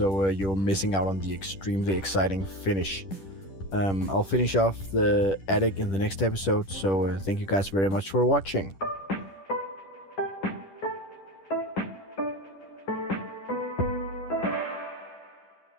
you're missing out on the extremely exciting finish. I'll finish off the attic in the next episode, so thank you guys very much for watching.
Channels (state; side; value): late; right; 10 ms